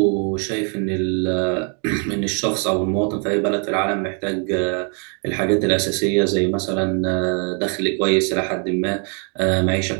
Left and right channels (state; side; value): quieter; left; 39.7 dB